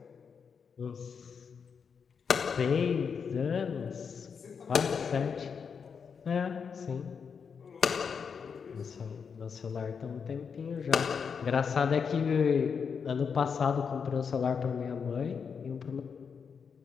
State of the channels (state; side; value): quieter; right; 6.3 dB